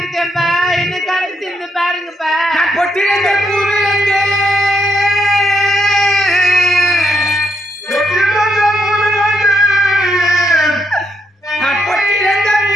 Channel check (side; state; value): both; normal; correlation 0.77